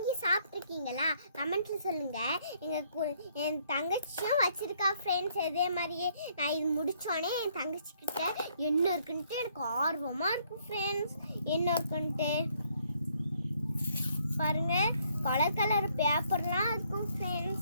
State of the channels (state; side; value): inverted; both; correlation -0.68